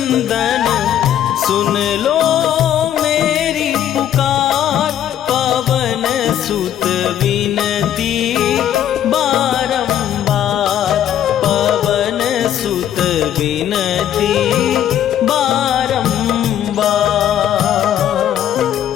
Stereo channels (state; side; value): quieter; right; 10.7 dB